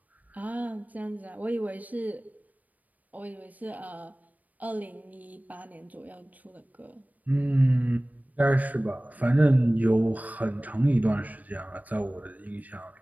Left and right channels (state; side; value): late; left; 0.076 ms